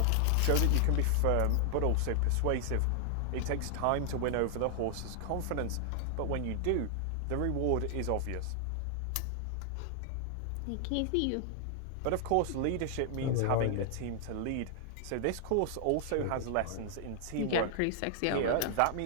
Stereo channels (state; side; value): different; both; correlation 0.00